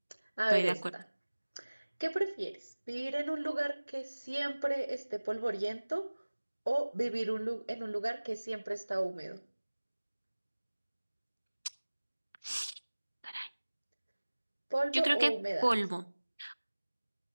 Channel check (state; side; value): inverted; both; correlation -1.00